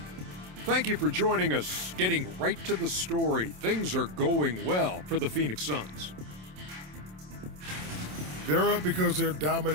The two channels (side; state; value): left; late; 27 ms